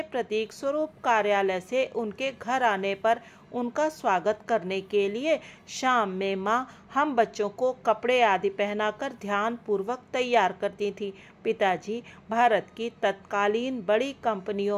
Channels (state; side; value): identical; both; correlation 1.00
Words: प्रतीक स्वरूप कार्यालय से उनके घर आने पर उनका स्वागत करने के लिए शाम में माँ हम बच्चों को कपड़े आदि पहनाकर ध्यान पूर्वक तैयार करती थी। पिताजी भारत की तत्कालीन बड़ी